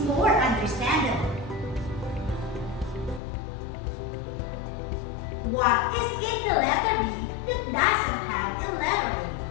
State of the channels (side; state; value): right; drops out; at 3.2 s